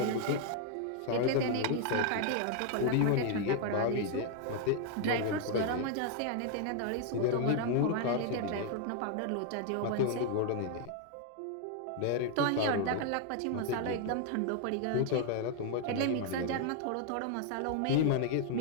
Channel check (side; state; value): both; different; correlation 0.00